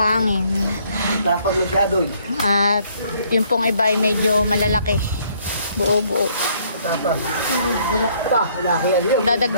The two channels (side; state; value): both; inverted; correlation -0.65